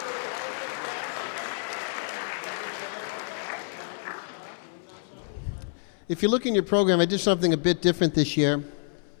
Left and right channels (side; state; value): right; silent; 59 dB below the other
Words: if you look in your program, I did something a bit different this year.